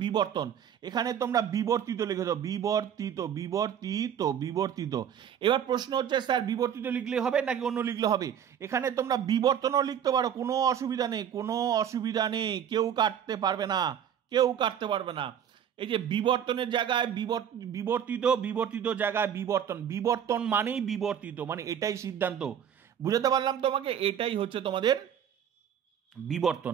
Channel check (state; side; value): quieter; left; 9.0 dB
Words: বিবর্তন। এখানে তোমরা বিবর্তিত লিখে দাও, বিবর্তিত, বিবর্তিত, বিবর্তিত। এবার প্রশ্ন হচ্ছে স্যার বিবর্তিত লিখলে হবে নাকি অন্য লিখলে হবে। এখানে তোমরা বিবর্তনও লিখতে পারো, কোনো অসুবিধা নেই, কোনো অসুবিধা নেই, কেউ কাটতে পারবে না, কেউ কাটতে পারবে না। এই যে বিবর্তনের জায়গায় বিবর্তিত, বিবর্তিত জায়গায় বিবর্তন, বিবর্তন মানেই বিবর্তিত, মানে এটাই সিদ্ধান্ত। বুঝাতে পারলাম তোমাকে, এটাই হচ্ছে তোমাদের বিবর্তন,